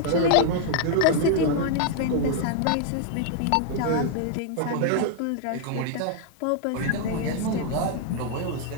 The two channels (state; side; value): different; both; correlation 0.00